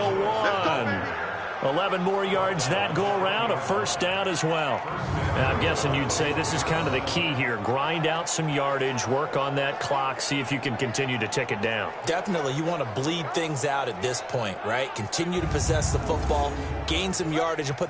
1. 11 more yards that go around, a first down as well. Now, I'm guessing you'd say this is kind of the key here. Grind out some yardage, work on that clock, see if you can continue to tick it down. Definitely, you want to bleed things out at this point, right? Continue to possess the football, gain some yardage, and put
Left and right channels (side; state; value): both; identical; correlation 1.00